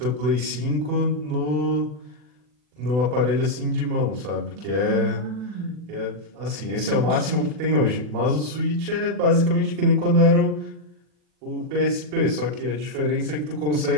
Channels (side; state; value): left; late; 40 ms